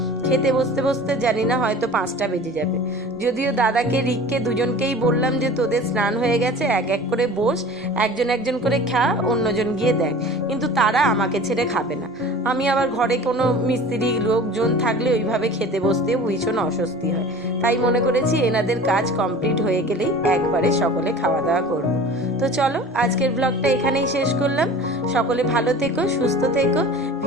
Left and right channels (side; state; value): both; normal; correlation 0.40